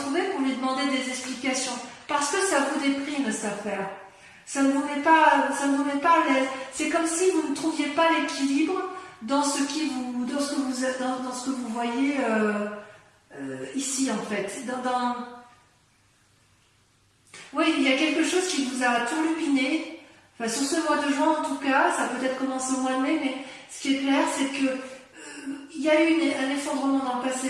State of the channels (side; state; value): both; identical; correlation 1.00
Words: pour lui demander des explications. Parce que ça vous déprime, cette affaire. Ça ne vous met pas à l'aise. C'est comme si vous ne trouviez pas l'équilibre dans ce que vous voyez ici, en fait. Oui, il y a quelque chose qui vous a turlupiné. Enfin, sur ce mois de juin, en tout cas, ça a peut-être commencé au mois de mai, mais ce qui est clair, c'est que il y a eu un effondrement dans le passé,